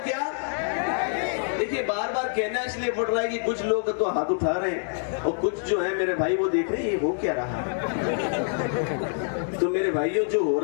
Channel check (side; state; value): right; silent; 61 dB below the other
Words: बार बार कहना इसलिए पड़ रहा है कि कुछ लोग तो हाथ उठा रहे हैं और कुछ जो है मेरे भाई वो देख रहे हैं ये हो क्या रहा है। तो मेरे भाइयों जो हो